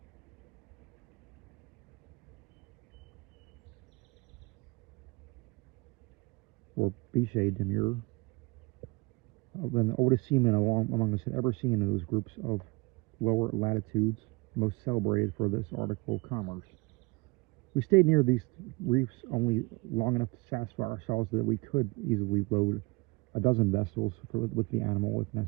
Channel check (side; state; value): left; quieter; 26.2 dB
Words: or Biche de Mir, than the oldest seamen among us had ever seen in those groups of lower latitudes, most celebrated for this article of commerce. We stayed near these reefs only long enough to satisfy ourselves that we could easily load a dozen vessels with the animal if